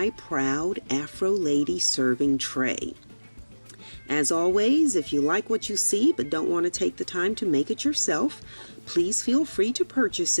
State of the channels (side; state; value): both; inverted; correlation -1.00